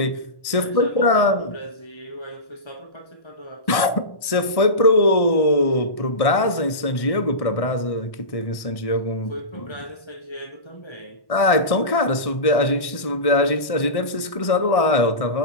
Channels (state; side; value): late; right; 1.1 ms